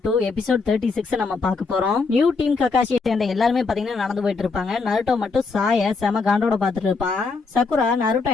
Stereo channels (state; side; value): quieter; right; 4.4 dB